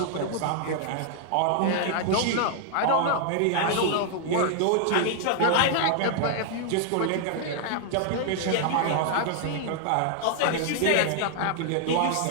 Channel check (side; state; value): both; different; correlation 0.00